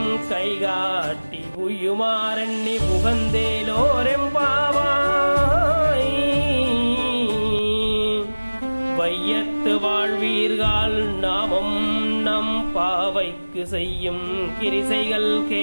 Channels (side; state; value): both; inverted; correlation -1.00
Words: கைகாட்டி உயுமாறெண்ணி புகந்தேலோரெம்பாவாய். வையத்து வாழ்வீர்கள் நாமும் நம் பாவைக்கு செய்யும் கிரிசைகள்